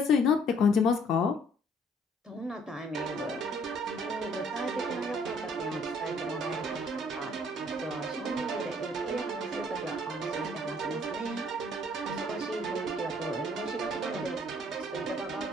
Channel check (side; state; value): both; normal; correlation 0.61